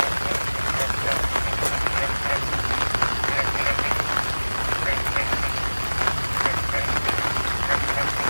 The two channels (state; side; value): inverted; both; correlation -1.00